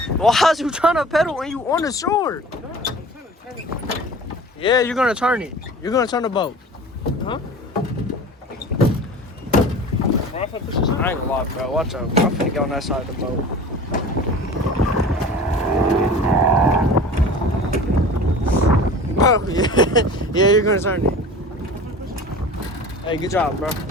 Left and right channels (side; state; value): both; normal; correlation 0.39